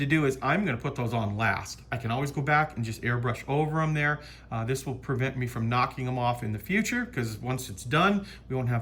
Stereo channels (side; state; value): both; identical; correlation 1.00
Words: do is I'm gonna put those on last. I can always go back and just airbrush over them there. This will prevent me from knocking them off in the future, because once it's done, we won't